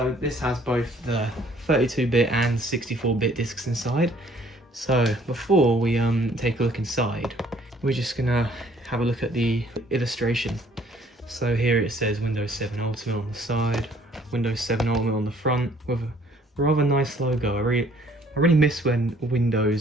this has both the 32-bit and 64-bit discs inside. So before we take a look inside, we're just gonna have a look at the illustration. So here it says Windows 7 Ultimate on the side, Windows 7 Ultimate on the front with a rather nice logo. I really miss when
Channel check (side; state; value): both; normal; correlation 0.60